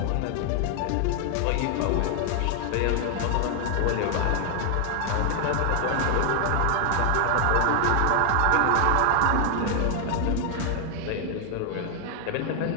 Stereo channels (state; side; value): different; both; correlation 0.00